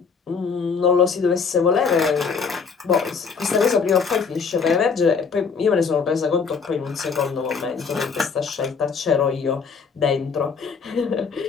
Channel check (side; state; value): right; quieter; 5.5 dB